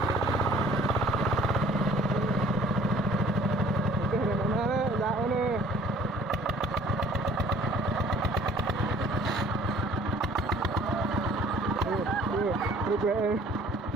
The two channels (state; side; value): normal; both; correlation 0.53